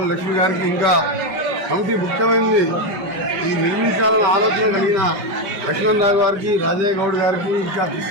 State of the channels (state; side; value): late; left; 5.1 ms